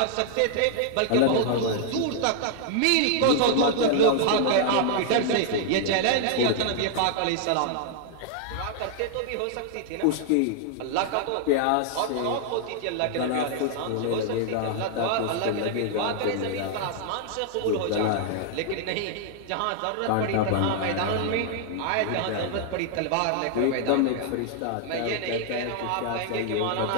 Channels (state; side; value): different; both; correlation -0.01